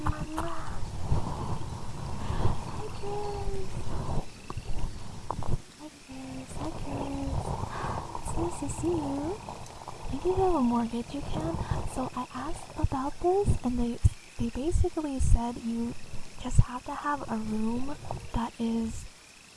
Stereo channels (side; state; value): both; identical; correlation 1.00